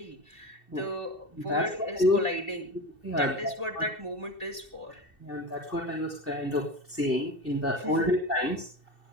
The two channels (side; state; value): right; late; 2.7 ms